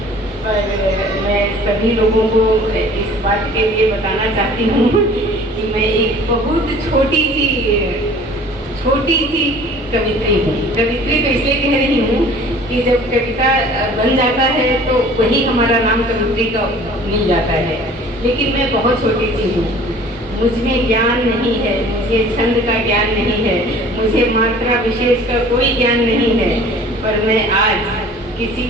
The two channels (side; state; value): both; normal; correlation 0.48